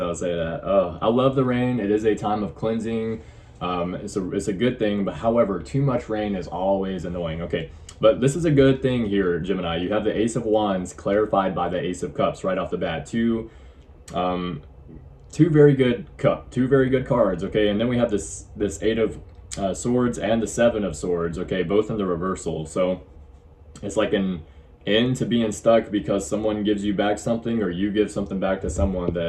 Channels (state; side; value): identical; both; correlation 1.00